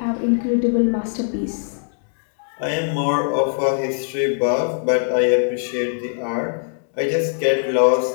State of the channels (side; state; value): right; silent; 65 dB below the other